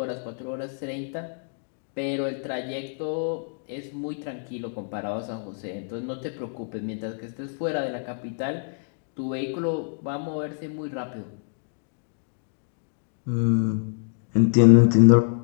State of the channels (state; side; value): silent; right; digital silence